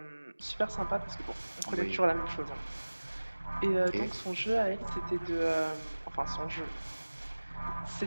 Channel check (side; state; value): both; inverted; correlation -1.00